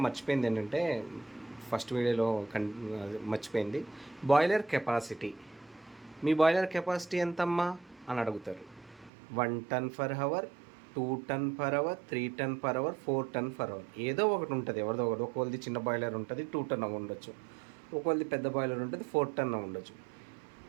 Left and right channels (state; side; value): drops out; left; at 9.1 s